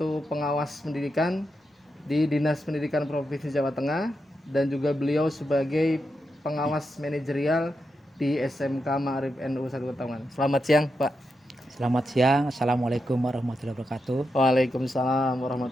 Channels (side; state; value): both; normal; correlation 0.86